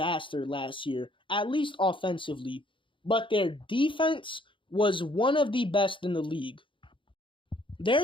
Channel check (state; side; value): late; right; 0.25 ms